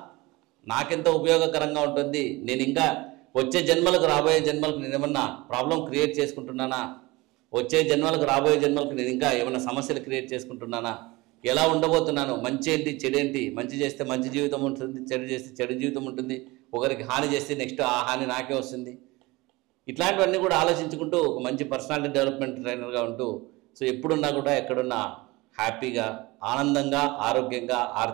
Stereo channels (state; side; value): quieter; left; 22.1 dB